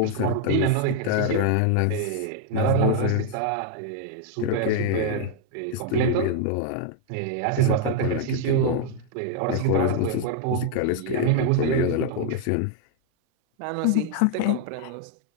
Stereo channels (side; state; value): both; different; correlation 0.00